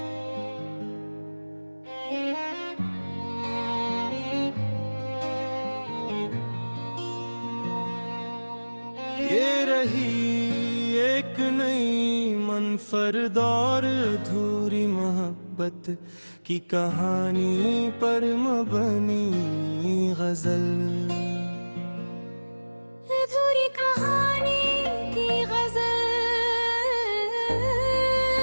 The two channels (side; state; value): both; inverted; correlation -1.00